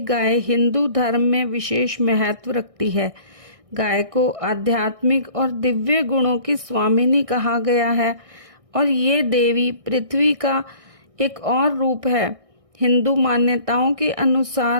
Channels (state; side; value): late; left; 1.6 ms